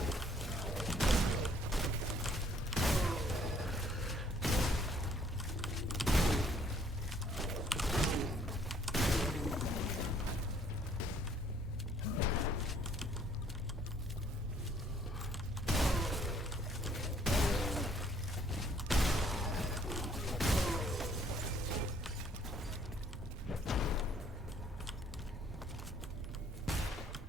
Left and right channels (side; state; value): both; normal; correlation 0.63